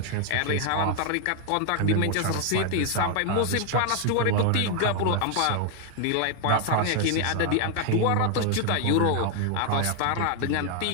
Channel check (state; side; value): different; both; correlation 0.00